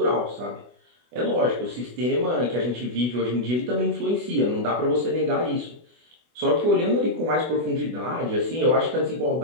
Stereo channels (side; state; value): left; late; 24 ms